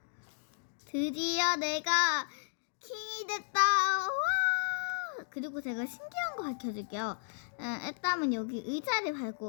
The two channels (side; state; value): right; silent; digital silence